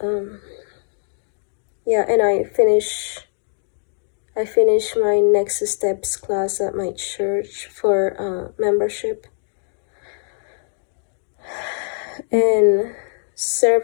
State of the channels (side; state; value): right; silent; digital silence